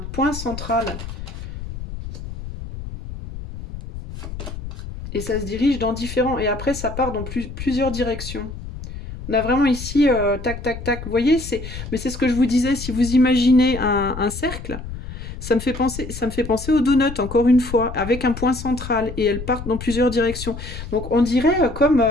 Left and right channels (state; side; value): noise; left; rumble, 10 dB below the sound